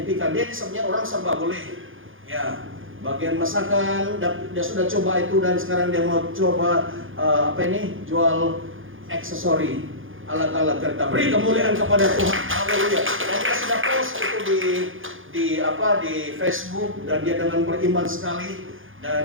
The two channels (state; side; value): late; left; 0.58 ms